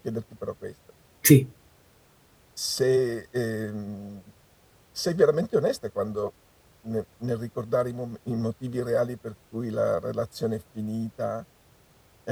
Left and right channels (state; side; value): identical; both; correlation 1.00